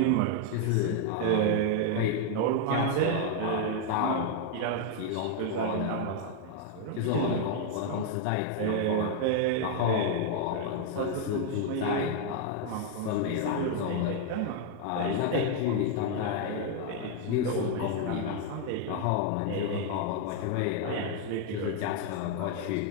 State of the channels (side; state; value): both; different; correlation 0.00